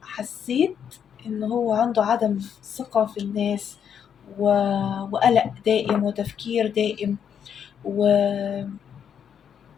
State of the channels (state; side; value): quieter; right; 8.2 dB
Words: حسيت إن هو عنده عدم ثقة في الناس وقلق دائم وتفكير دائم